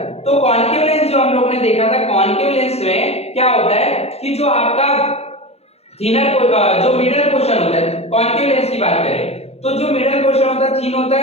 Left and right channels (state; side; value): late; right; 0.30 ms